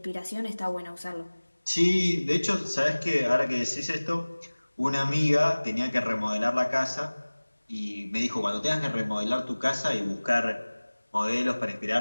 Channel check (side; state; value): both; inverted; correlation -1.00